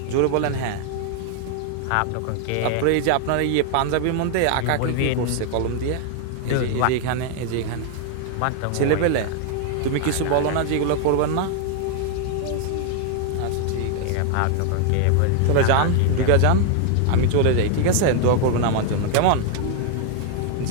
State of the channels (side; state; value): both; different; correlation 0.00